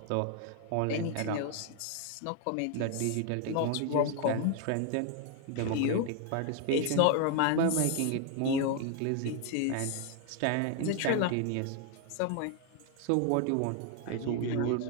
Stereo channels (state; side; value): different; both; correlation 0.01